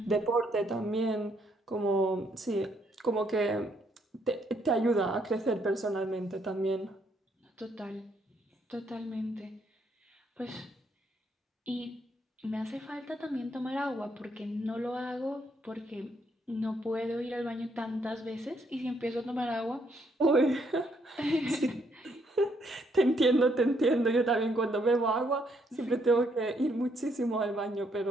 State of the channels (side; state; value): both; normal; correlation 0.72